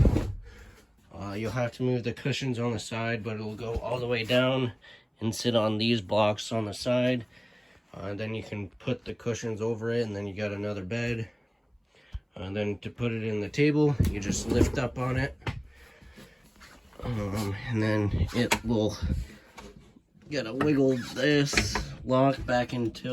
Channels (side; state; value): both; identical; correlation 1.00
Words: You'll have to move the cushions on the side, but it'll go all the way down and sit on these blocks on the side. Then you can put the cushions over it, and then you got another bed. And then to put it in the table, you just lift up on it. And then it will, you gotta wiggle this lock back